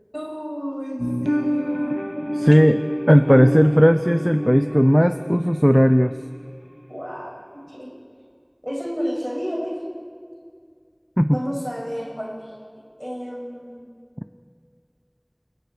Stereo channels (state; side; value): identical; both; correlation 1.00